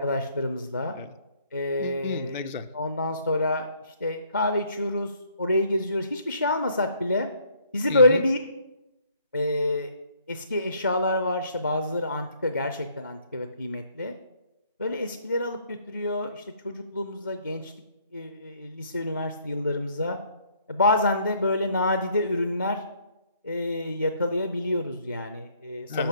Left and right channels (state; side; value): inverted; both; correlation -0.65